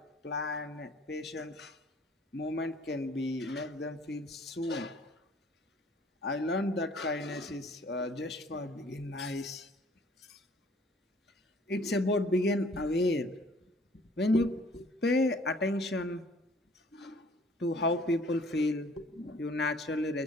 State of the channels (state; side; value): normal; both; correlation 0.56